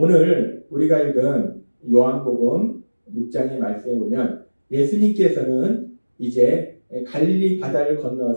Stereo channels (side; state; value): both; inverted; correlation -1.00